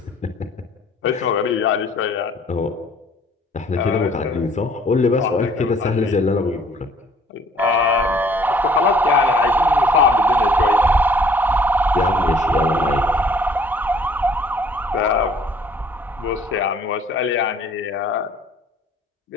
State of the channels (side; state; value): both; normal; correlation 0.57